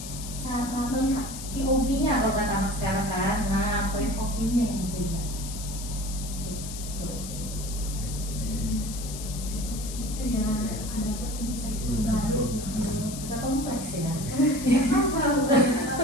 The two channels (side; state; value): left; noise; hiss, 10 dB below the sound